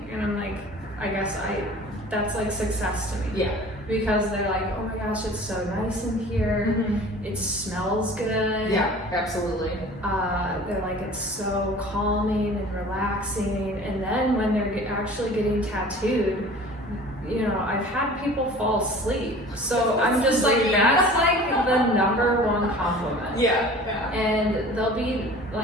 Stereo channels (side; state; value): both; normal; correlation 0.44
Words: and I'm like, I guess that's like success to me. Yeah. Because they're like, oh my gosh, it's so nice in here. It smells good. Yeah, absolutely. They're like, it's so calming and relaxing. And then when they're actually getting tattooed, I've had people fall asleep. So I'm just like, that's like the number one compliment. Yeah. And they'll be